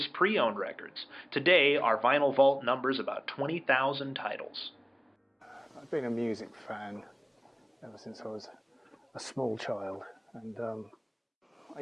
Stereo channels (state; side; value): identical; both; correlation 1.00